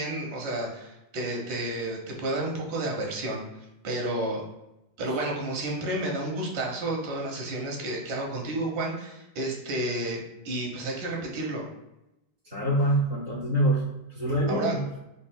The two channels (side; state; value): left; late; 4.3 ms